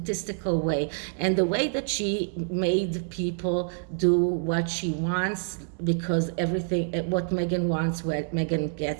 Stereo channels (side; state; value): left; silent; 60 dB below the other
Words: way, and the way that she made people do what she wants, because everything what Meghan wants, what Meghan